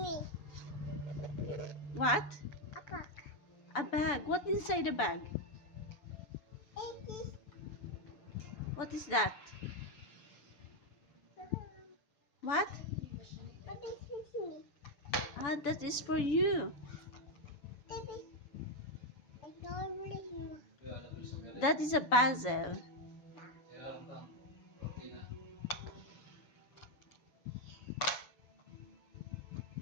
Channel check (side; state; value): right; late; 7.0 ms